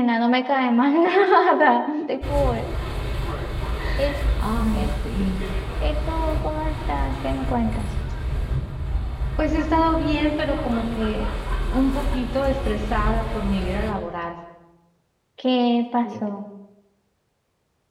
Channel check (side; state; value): both; identical; correlation 1.00